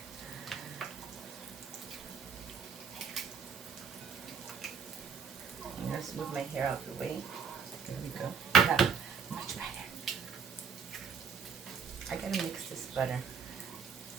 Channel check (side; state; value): left; quieter; 6.1 dB